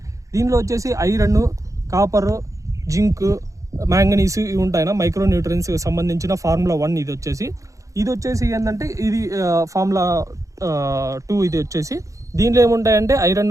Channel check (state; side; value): late; left; 0.16 ms